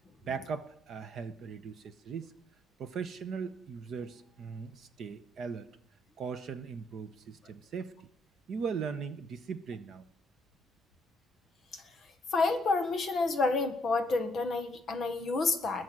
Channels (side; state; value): both; normal; correlation 0.70